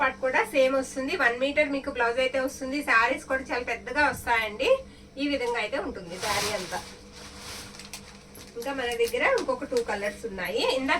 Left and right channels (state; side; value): identical; both; correlation 1.00